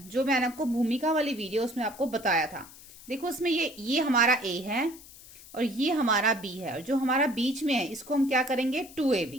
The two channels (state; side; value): noise; left; hiss, 19 dB below the sound